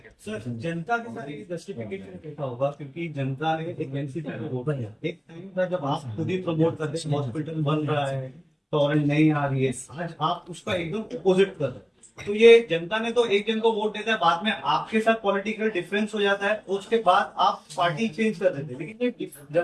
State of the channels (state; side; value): identical; both; correlation 1.00